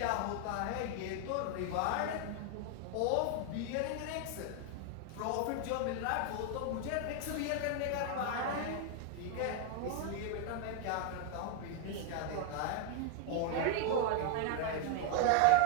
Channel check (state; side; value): different; both; correlation 0.01